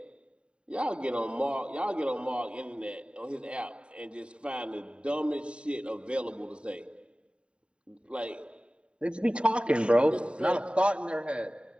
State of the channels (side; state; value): left; late; 0.054 ms